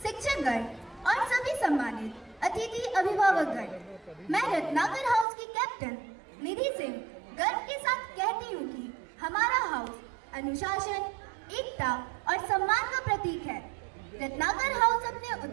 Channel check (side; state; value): left; drops out; at 5.2 s